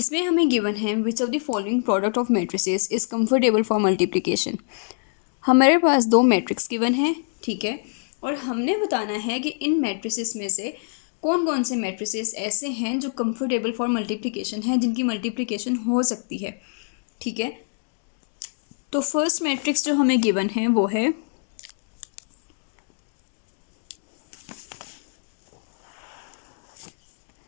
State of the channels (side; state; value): right; silent; digital silence